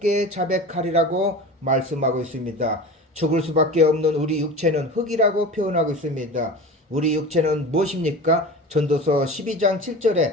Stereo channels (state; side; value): normal; both; correlation 0.33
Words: 자백하리라고 말씀하고 있습니다. 죽을 수밖에 없는 우리 육체는 흙이라고 표현하고 있습니다. 우리 육체는 무엇입니까? 전도서 12장